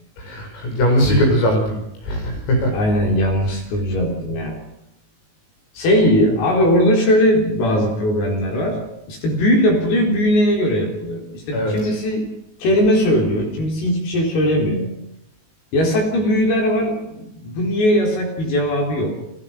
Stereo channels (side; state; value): right; late; 19 ms